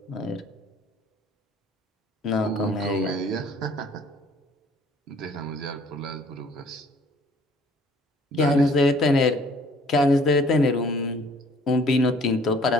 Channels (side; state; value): both; normal; correlation 0.56